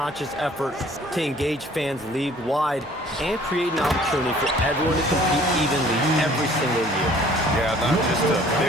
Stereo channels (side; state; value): both; normal; correlation 0.54